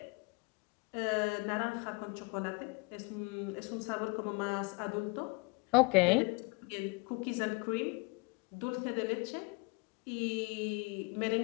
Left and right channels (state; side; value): quieter; right; 29.5 dB